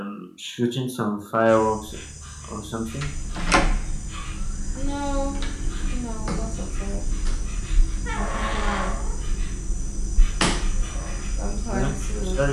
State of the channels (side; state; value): both; identical; correlation 1.00